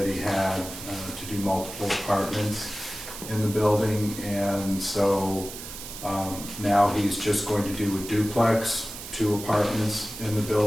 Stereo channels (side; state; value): right; noise; hiss, 11 dB below the sound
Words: he had to do multiple apartments in the building, and so now he's just going to do a duplex, 2 apartments in the